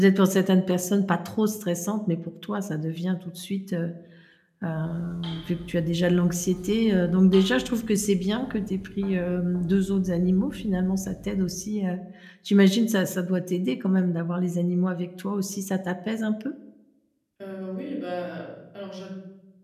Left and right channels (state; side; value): identical; both; correlation 1.00